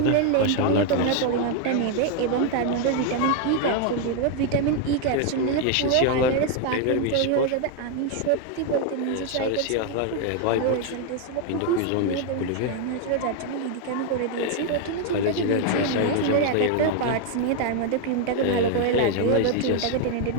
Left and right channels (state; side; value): different; both; correlation 0.01